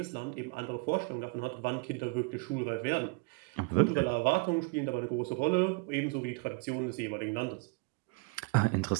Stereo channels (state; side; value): quieter; left; 28.1 dB